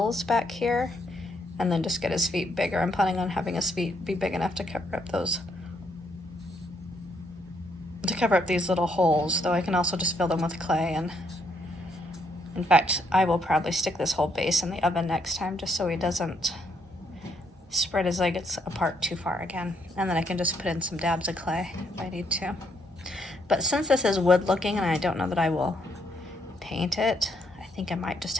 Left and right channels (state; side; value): normal; both; correlation 0.73